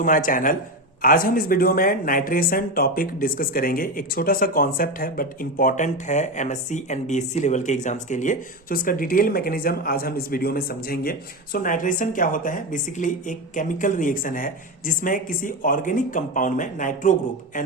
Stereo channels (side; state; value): both; normal; correlation 0.18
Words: my channel. आज हम इस वीडियो में नाइट्रेशन टॉपिक डिस्कस करेंगे। एक छोटा सा कॉन्सेप्ट है बट इंपॉर्टेंट है एमएससी एंड बीएससी लेवल के एग्जाम्स के लिए। सो इसका डिटेल मैकेनिज्म आज हम इस वीडियो में समझेंगे। सो नाइट्रेशन क्या होता है? बेसिकली एक केमिकल रिएक्शन है जिसमें किसी ऑर्गेनिक कंपाउंड में नाइट्रो ग्रुप